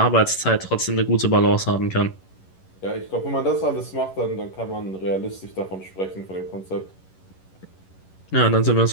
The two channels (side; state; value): right; late; 11 ms